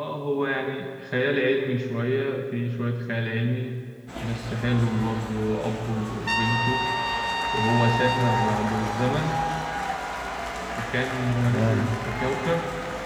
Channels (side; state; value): both; identical; correlation 1.00